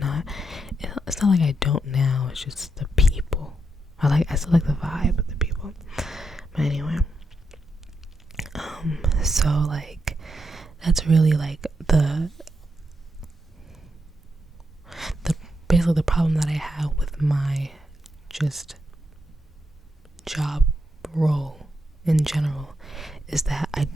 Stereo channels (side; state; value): both; normal; correlation 0.82